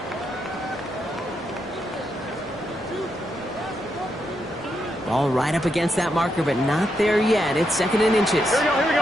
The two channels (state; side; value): normal; both; correlation 0.82